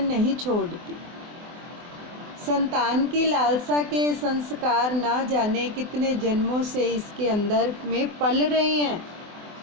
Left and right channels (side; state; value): left; late; 24 ms